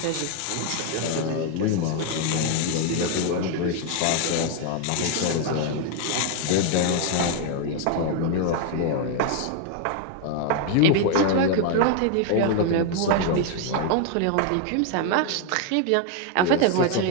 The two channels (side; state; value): both; different; correlation 0.00